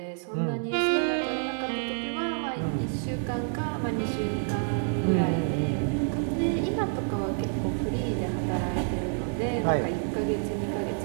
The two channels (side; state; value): left; silent; 57 dB below the other